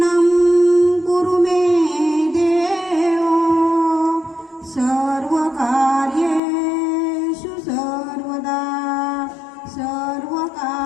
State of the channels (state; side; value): drops out; right; at 6.4 s